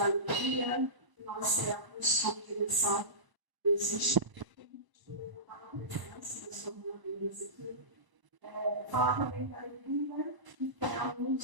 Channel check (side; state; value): left; late; 1.0 ms